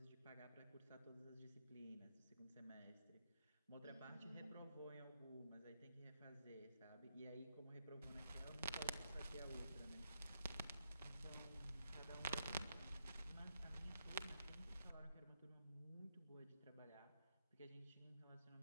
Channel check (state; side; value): inverted; both; correlation -0.80